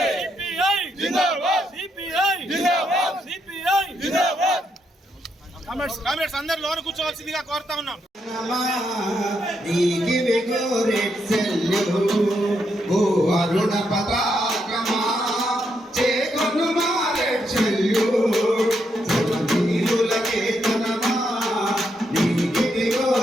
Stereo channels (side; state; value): both; normal; correlation 0.79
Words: కామ్రేడ్స్ అందరు లోన కూర్చోవలసిందిగా కోరుతా ఉన్నాం. అరుణ పతాకమా చేకొను మారెచ్చల్యు జగదీరులకే తనమా నీకి